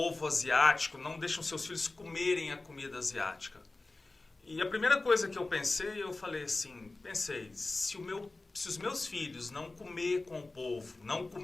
asiático, não deixa os seus filhos comerem a comida asiática. E a primeira coisa que eu pensei, eu falei assim, se os meus filhos não comer com o povo, não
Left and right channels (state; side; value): quieter; right; 3.2 dB